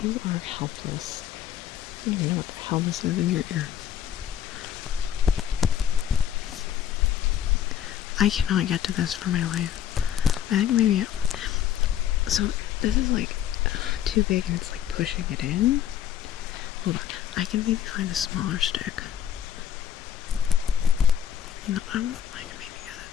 you are helpless. I don't even know what the hell this is in your ear. I cannot get to this for my life. I think maybe... So, this is like too big and it's like pushing it in. Hold on. I can maybe find a smaller stick. No, I can maybe get it.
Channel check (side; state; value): right; quieter; 9.9 dB